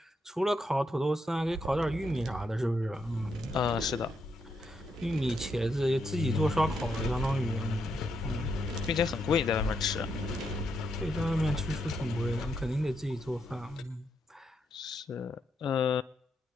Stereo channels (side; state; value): both; normal; correlation 0.80